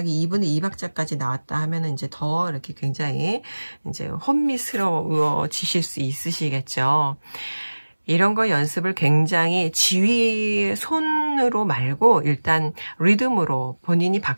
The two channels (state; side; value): inverted; both; correlation -1.00